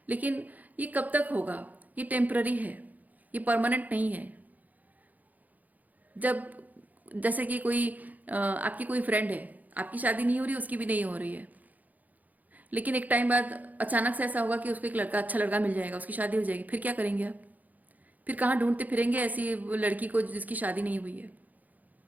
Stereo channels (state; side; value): late; left; 0.080 ms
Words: लेकिन ये कब तक होगा? ये टेम्पररी है, ये परमानेंट नहीं है। जब जैसे कि आपकी कोई फ्रेंड है, आपकी शादी नहीं हो रही, उसकी भी नहीं हो रही है, लेकिन एक टाइम बाद अचानक से ऐसा होगा कि उसको एक लड़का, अच्छा लड़का मिल जाएगा, उसकी शादी हो जाएगी, फिर क्या करेंगे आप? फिर कहाँ ढूंढते फिरेंगे ऐसी लड़की को जिसकी शादी नहीं हुई है?